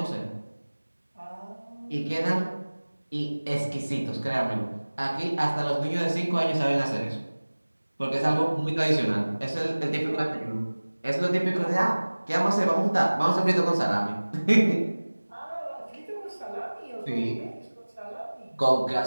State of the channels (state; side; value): inverted; both; correlation -1.00